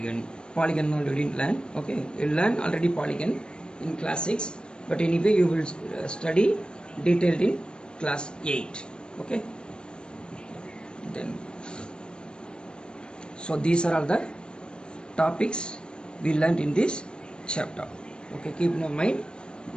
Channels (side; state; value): right; late; 0.051 ms